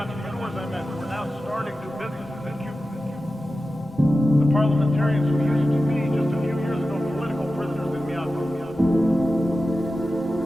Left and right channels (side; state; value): both; normal; correlation 0.93